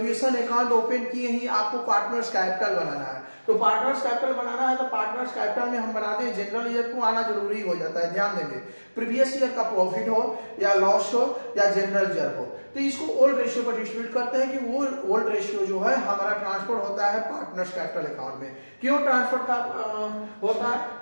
अकाउंट ओपन किए ही आपको पार्टनर्स कैपिटल बनाना है। तो पार्टनर्स कैपिटल बनाना है तो पार्टनर्स कैपिटल में हम बनाते हैं जनरल रिजर्व को आना जरूरी हो जाता है। ध्यान देंगे प्रीवियस ईयर का प्रॉफिट हो या लॉस हो या जनरल रिजर्व हो, तो इसको ओल्ड रेशियो पर डिस्ट्रीब्यूट करते हैं कि वो ओल्ड रेशियो जो है हमारा ट्रांसफर होता है पार्टनर्स कैपिटल अकाउंट में। क्यों ट्रांसफर का होता है,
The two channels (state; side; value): inverted; both; correlation -1.00